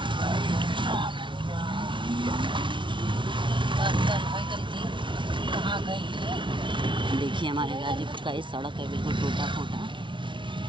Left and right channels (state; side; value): late; left; 0.24 ms